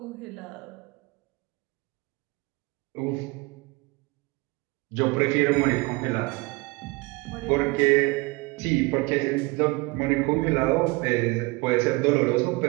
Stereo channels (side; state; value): left; quieter; 24.8 dB